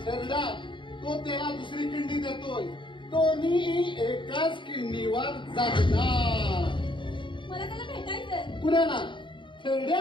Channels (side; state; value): right; late; 0.23 ms